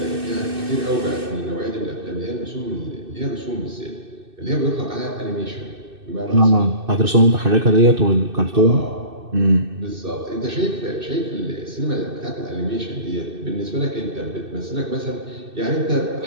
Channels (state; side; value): late; left; 2.6 ms